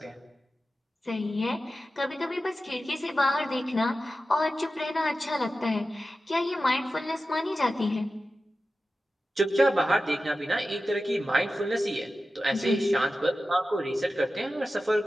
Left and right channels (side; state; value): both; normal; correlation 0.94